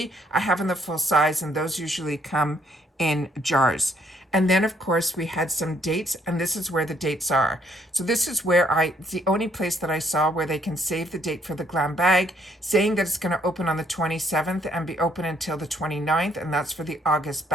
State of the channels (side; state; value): both; normal; correlation 0.67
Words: I have in the full size, and those usually come in jars. And then, of course, we had some dates, and this is where the dates are. So this is where it's the only place that I saw where they can save the date for the glam bag, saying that it's going to open on the 27th and be open until the 29th, and that's for the August